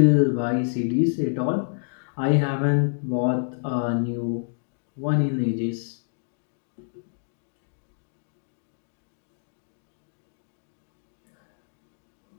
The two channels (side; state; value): right; silent; digital silence